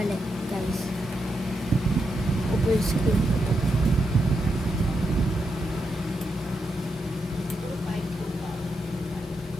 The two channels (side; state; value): both; normal; correlation 0.84